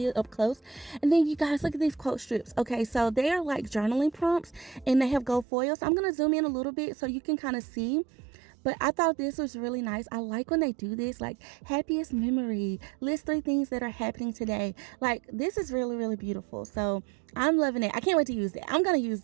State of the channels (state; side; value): drops out; left; at 5.5 s